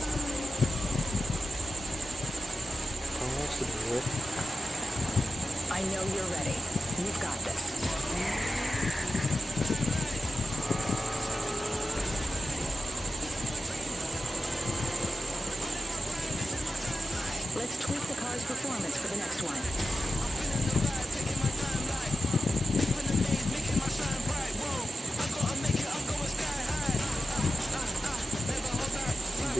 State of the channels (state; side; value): normal; both; correlation 0.90